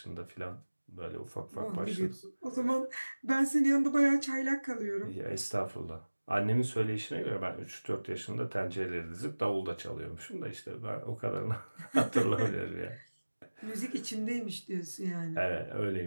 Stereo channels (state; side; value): inverted; both; correlation -1.00